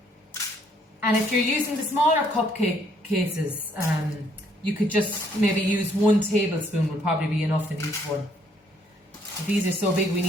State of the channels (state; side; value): normal; both; correlation 0.67